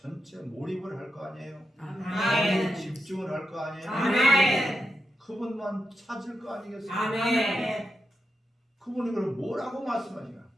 몰입을 할 거 아니에요. 아멘. 집중을 할 거 아니에요. 아멘. 그분만 찾을 거 아니겠어요. 아멘. 그분이 그럼 뭐라고 말씀하시나?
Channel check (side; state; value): both; normal; correlation 0.87